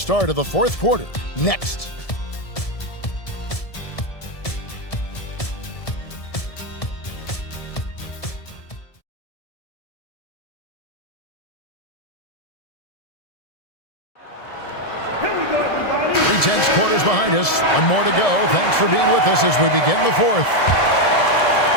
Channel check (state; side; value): late; right; 1.7 ms